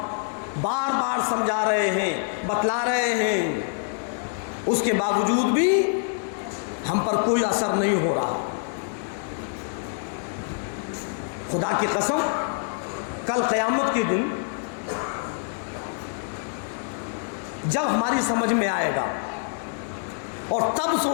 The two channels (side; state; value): right; silent; 61 dB below the other